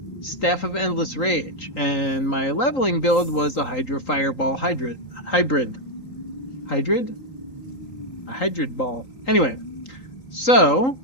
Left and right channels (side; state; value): right; late; 3.8 ms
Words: Staff of Endless Rage. And my leveling build was a Hydra Fireball Hybrid. Hybrid? A Hybrid Ball. Anyway, so